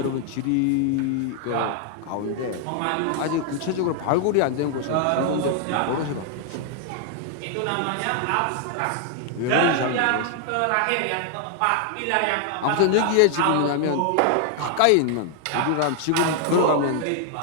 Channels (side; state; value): both; different; correlation 0.00